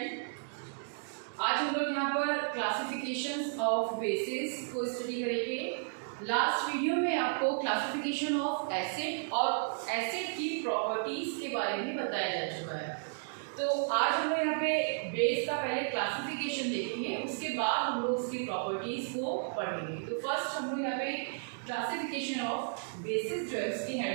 आज हम लोग यहाँ पर क्लासिफिकेशंस ऑफ बेसिस को स्टडी करेंगे। लास्ट वीडियो में आपको क्लासिफिकेशन ऑफ एसिड और एसिड की प्रॉपर्टीज के बारे में बताया जा चुका है। तो आज हम लोग यहाँ पे बेस का पहले क्लासिफिकेशन देखेंगे, उसके बाद हम लोग उसकी प्रॉपर्टीज को पढ़ेंगे। तो फर्स्ट हम लोग यहाँ पे क्लासिफिकेशन ऑफ बेसिस जो है उसकी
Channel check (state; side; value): silent; left; digital silence